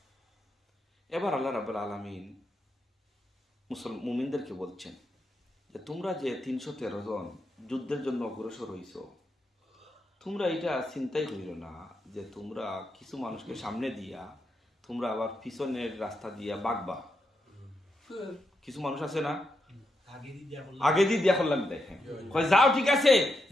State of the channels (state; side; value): normal; both; correlation 0.83